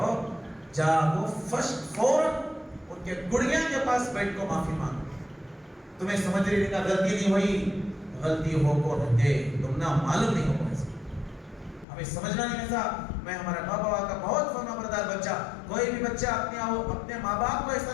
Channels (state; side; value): drops out; right; at 11.9 s